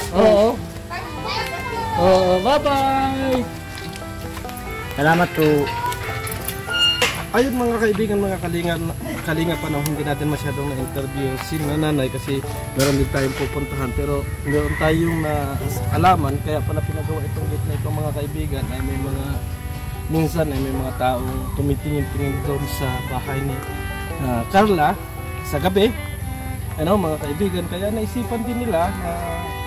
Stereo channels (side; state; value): both; identical; correlation 1.00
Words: po. Oo. Oo, bye-bye. Salamat po. Ayun mga kaibigan, mga kalinga pa na hindi natin masyadong na-interview si nanay kasi meron din tayong pupuntahan pero meron tayong alaman kaya pala pinagawa itong gate na itong mga kaibigan ay may mga minsan ay may mga taong tumitingin-tingin doon sa bahay ni Carla sa gabi, ano mga kaibigan, kaya naisipan din nila na